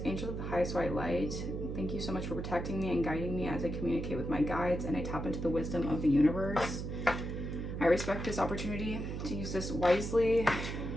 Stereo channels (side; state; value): right; noise; hum, 5 dB below the sound